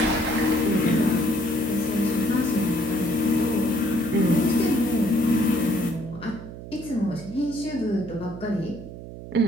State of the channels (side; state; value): right; noise; hum, 12 dB below the sound